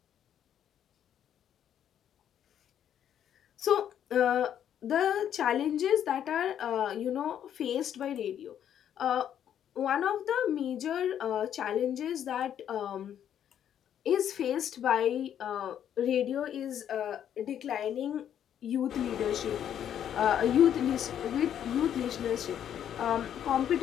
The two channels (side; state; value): right; quieter; 9.8 dB